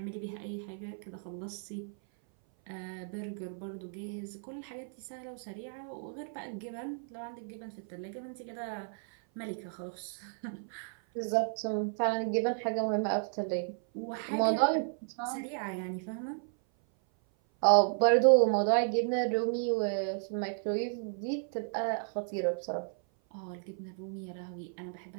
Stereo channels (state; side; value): silent; left; 55 dB below the other